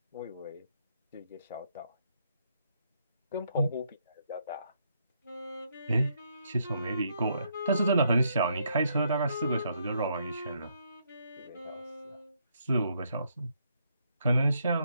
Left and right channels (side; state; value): both; inverted; correlation -0.74